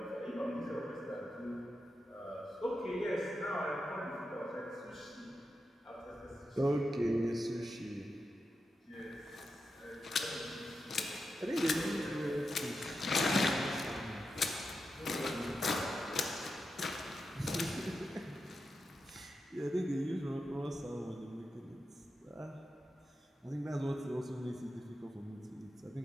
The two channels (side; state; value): both; normal; correlation 0.88